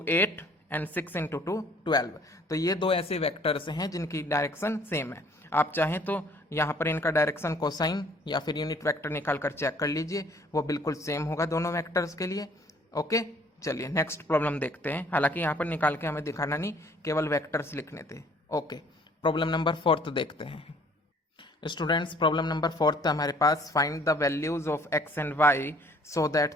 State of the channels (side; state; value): both; normal; correlation 0.58